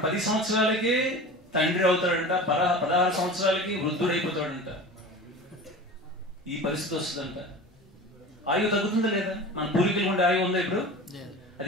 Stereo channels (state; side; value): normal; both; correlation 0.35